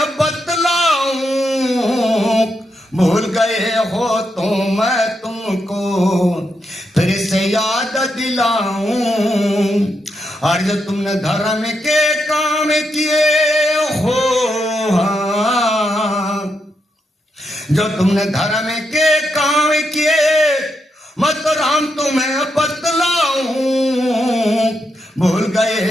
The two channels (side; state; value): both; normal; correlation 0.82